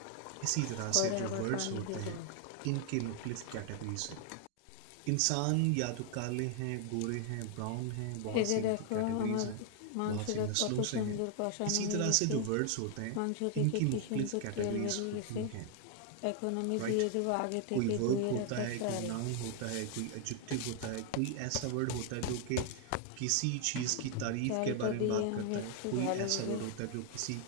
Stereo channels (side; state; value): both; different; correlation 0.00